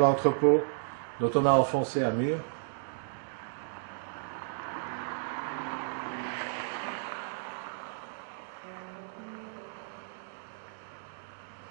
dont on a enfoncé un mur.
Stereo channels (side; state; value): left; silent; digital silence